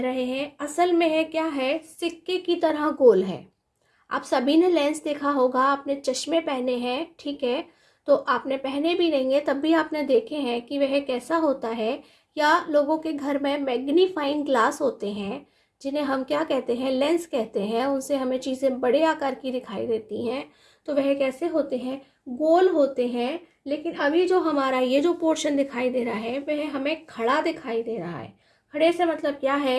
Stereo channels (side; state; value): both; identical; correlation 1.00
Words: रहे हैं। असल में है क्या है, सिक्के की तरह गोल है। आप सभी ने लेंस देखा होगा, आपने चश्मे पहने हैं, ठीक है, तो आपने पहने भी नहीं है तब भी आपने देखे हैं कि वह कैसा होता है। या लोगों के घर में मैग्नीफाइंग ग्लास होते हैं, जिन्हें हम क्या कहते हैं, लेंस कहते हैं, उनसे हमें चीज़ें बड़े आकार की दिखाई देती हैं। तो वह कैसे होते हैं, गोल होते हैं। लेकिन अभी जो हमारा ये जो पोर्शन दिखाई दे रहा है वह हमें खड़ा दिखाई दे रहा है। खड़े से मतलब क्या